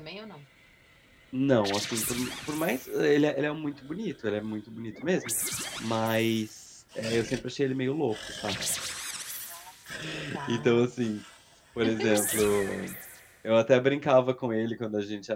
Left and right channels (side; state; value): both; identical; correlation 1.00